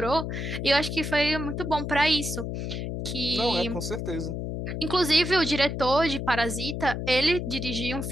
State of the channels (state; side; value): noise; left; hum, 4 dB below the sound